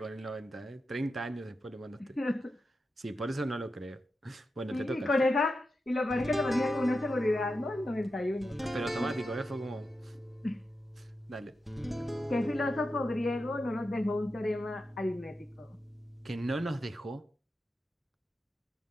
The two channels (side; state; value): both; normal; correlation 0.89